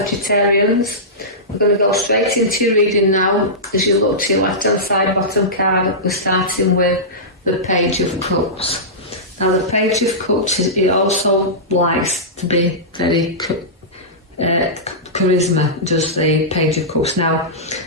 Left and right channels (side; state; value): both; normal; correlation -0.16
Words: We're going to go straight into your reading now. As you look to your left hand side bottom card, we're starting with the Page of Cups. Now the Page of Cups, it also likes to be very charisma, does the Page of Cups. Now